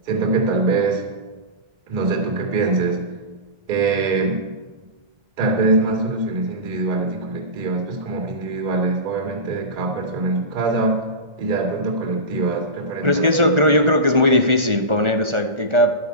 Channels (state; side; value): late; left; 1.4 ms